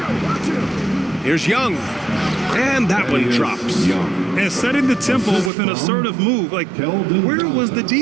Here's Young. And that one drops. And setting the tempo with an assertive move. Like, where was the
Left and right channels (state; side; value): drops out; left; at 5.5 s